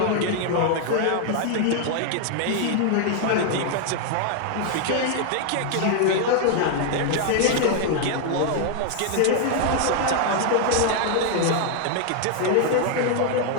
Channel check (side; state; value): both; different; correlation 0.00